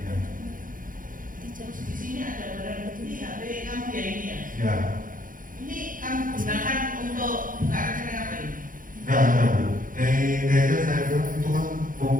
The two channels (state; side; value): late; left; 0.40 ms